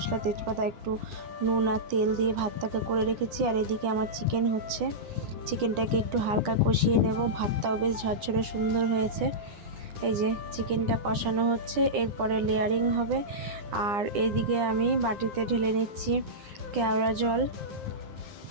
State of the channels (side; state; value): left; late; 9.9 ms